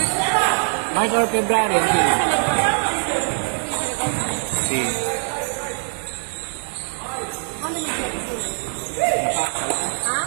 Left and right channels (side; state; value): left; silent; digital silence